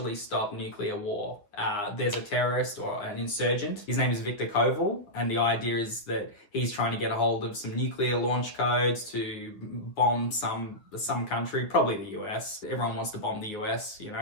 stop nuclear war. There's a terrorist or an insurgent. His name is Victor Koval, and the idea is that he's trying to get a hold of some nuclear launch codes to bomb some country, probably the US. Everyone wants to bomb the US, you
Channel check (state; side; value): late; right; 9.3 ms